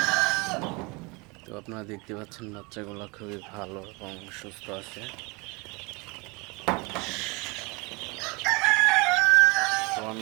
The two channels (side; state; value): left; quieter; 27.5 dB